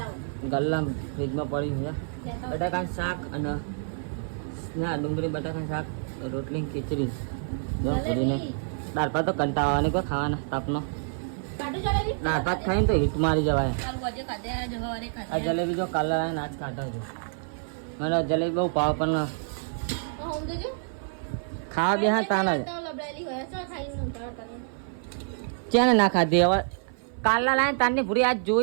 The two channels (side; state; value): left; silent; 56 dB below the other